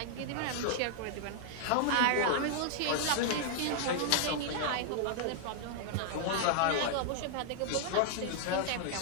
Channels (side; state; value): both; different; correlation -0.01